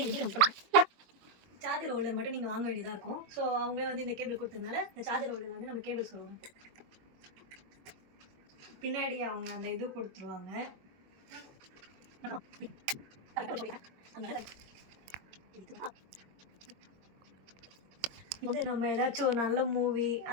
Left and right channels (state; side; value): late; left; 22 ms